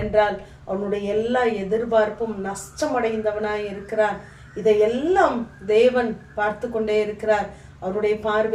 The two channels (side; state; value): both; identical; correlation 1.00